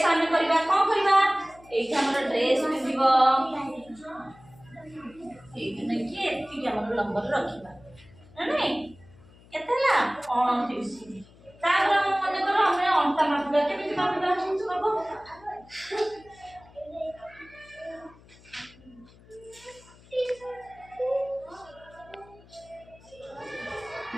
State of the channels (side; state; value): left; noise; hum, 25 dB below the sound